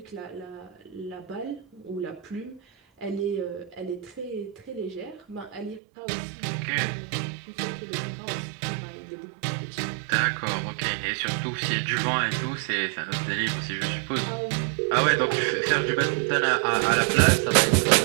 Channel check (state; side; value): drops out; left; at 5.8 s